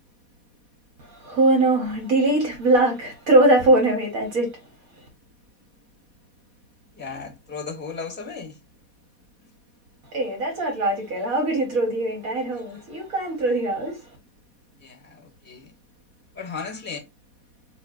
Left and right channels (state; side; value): late; left; 4.1 ms